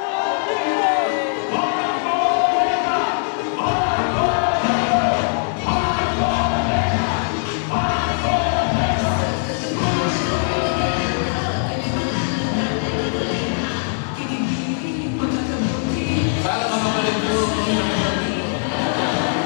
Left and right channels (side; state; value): right; silent; digital silence